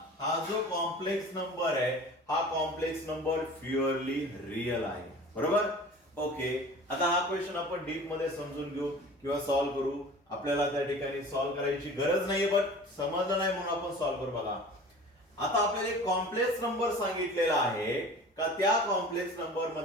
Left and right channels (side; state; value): both; normal; correlation 0.41